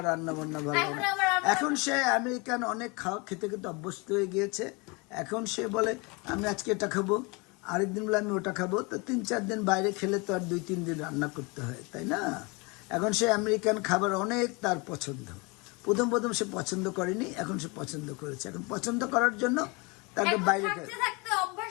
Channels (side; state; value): right; quieter; 28.3 dB